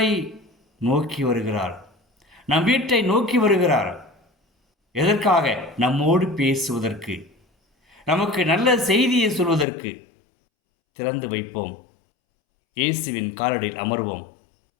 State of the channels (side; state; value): right; drops out; at 9.7 s